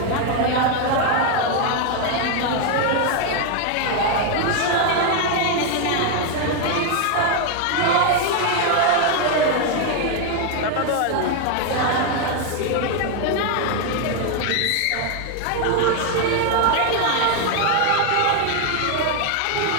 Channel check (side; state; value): both; different; correlation 0.01